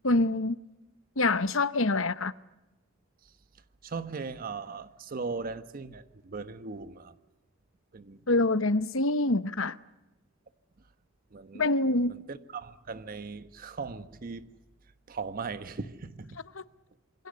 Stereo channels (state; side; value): normal; both; correlation 0.15